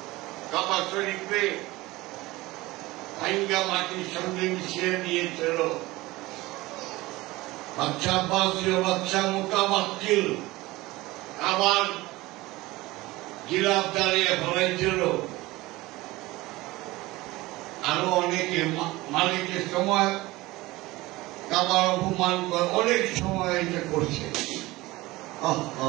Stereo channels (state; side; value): quieter; left; 19.8 dB